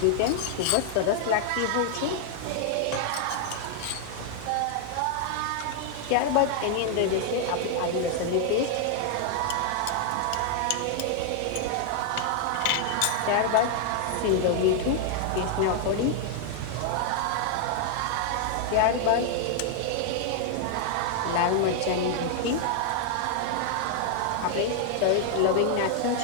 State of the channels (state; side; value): different; both; correlation 0.00